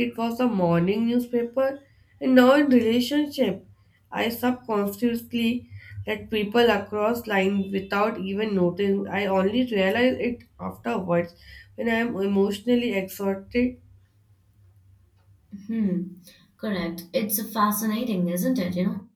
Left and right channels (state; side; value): identical; both; correlation 1.00